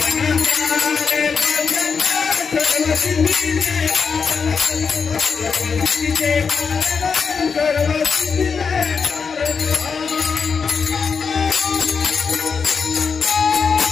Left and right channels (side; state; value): right; quieter; 5.7 dB